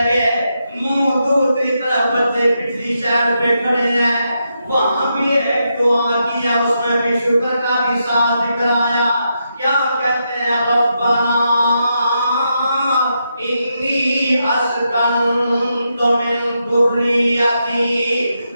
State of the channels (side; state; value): both; inverted; correlation -0.83